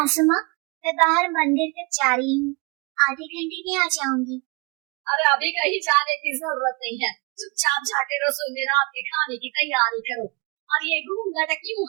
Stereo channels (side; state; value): left; quieter; 27.7 dB